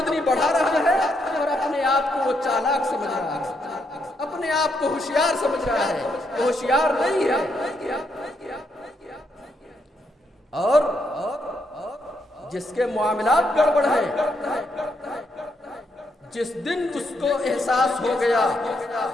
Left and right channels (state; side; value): normal; both; correlation 0.77